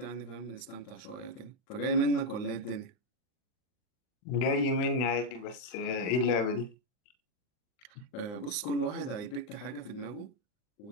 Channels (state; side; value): late; right; 39 ms